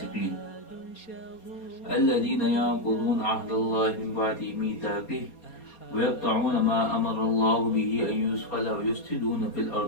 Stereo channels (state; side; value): late; right; 4.2 ms